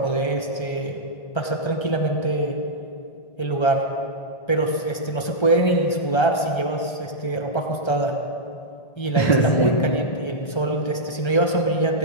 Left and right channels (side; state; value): right; late; 1.3 ms